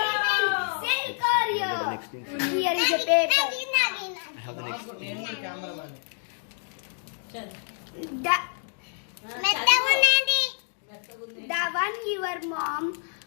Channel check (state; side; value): silent; right; 60 dB below the other